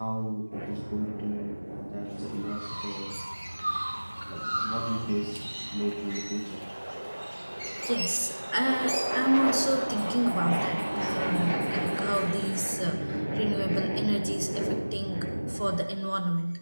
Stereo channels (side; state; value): both; inverted; correlation -1.00